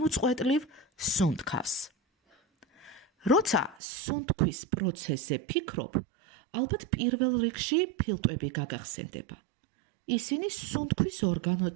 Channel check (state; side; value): drops out; left; at 3.8 s